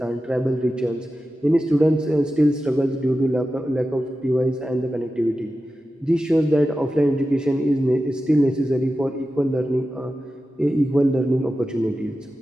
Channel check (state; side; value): normal; both; correlation 0.93